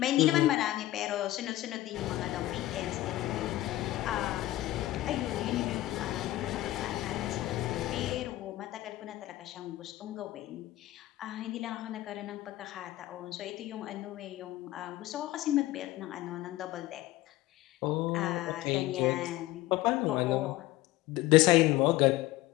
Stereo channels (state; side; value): quieter; right; 16.4 dB